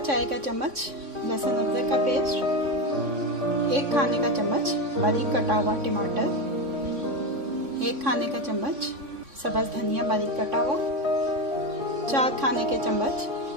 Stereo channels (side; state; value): left; late; 3.6 ms